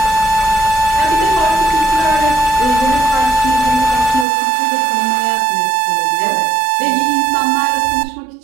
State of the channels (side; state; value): left; drops out; at 4.2 s